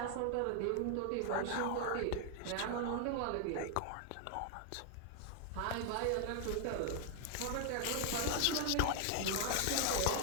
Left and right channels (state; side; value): different; both; correlation 0.00